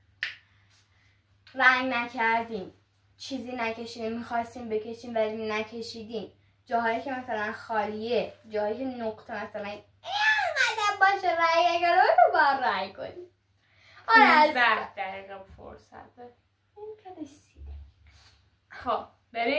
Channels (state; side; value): identical; both; correlation 1.00